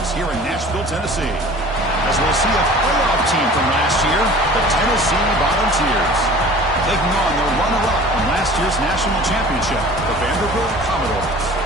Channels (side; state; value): both; normal; correlation 0.44